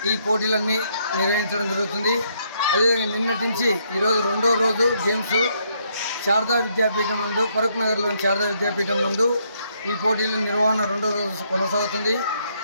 ఈ పోటీలన్నీ నిర్వహించడం జరుగుతుంది. అదేవిధంగా నిన్నటి నుంచి ఈరోజు 2వ రోజు గేమ్స్ శారదా విద్యాపీఠం నందు, ఫరూక్ నగర్లోని శారదా విద్యాపీఠం నందు ఈ పోటీల నిర్వహణ 2వ రోజు కొనసాగుతుంది.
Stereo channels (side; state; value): both; inverted; correlation -0.72